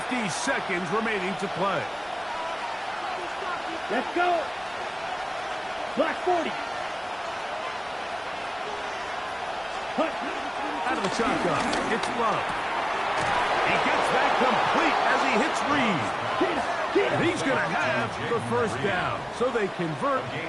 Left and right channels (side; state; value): both; identical; correlation 1.00